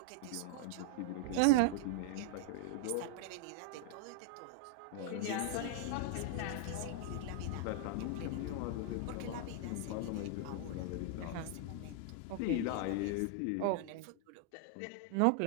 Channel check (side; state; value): both; different; correlation -0.01